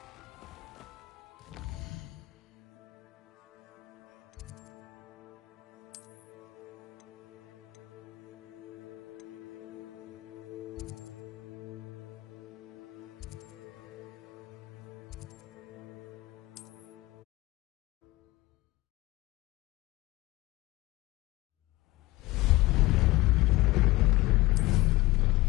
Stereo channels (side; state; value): right; quieter; 19.8 dB